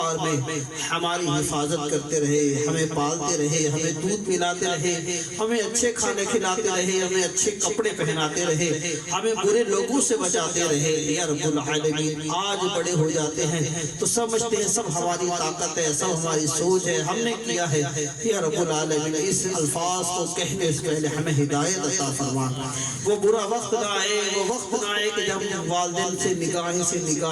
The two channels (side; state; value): both; identical; correlation 1.00